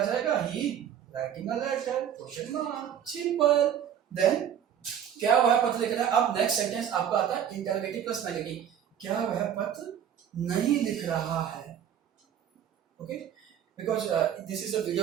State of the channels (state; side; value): quieter; left; 9.3 dB